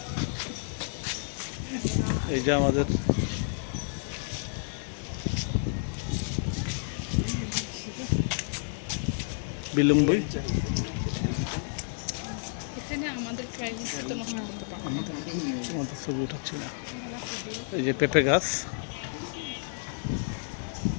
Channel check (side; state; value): right; silent; digital silence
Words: এই যে আমাদের বিলম্বই। আমাদের ছবি উঠাচ্ছি না। এই যে পেঁপে গাছ।